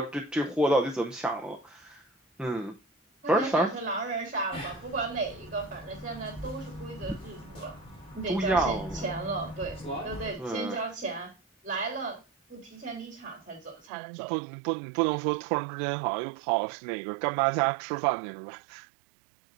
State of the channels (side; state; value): left; drops out; at 13.9 s